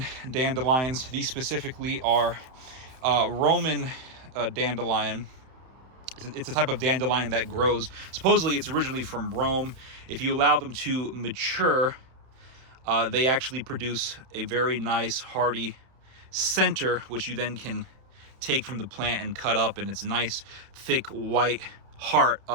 dandelions. These specifically are Roman dandelion. It's a type of dandelion that grows. Supposedly, it's originally from Rome. If you allow them to mature, they actually produce a very nice, hearty center, which you then can take from the plant and cut up, and it's a nice, thick, white heart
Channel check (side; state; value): left; late; 31 ms